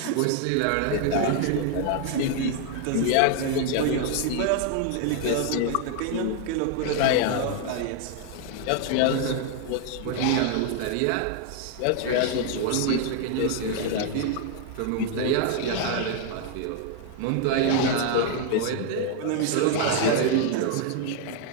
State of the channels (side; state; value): both; different; correlation 0.00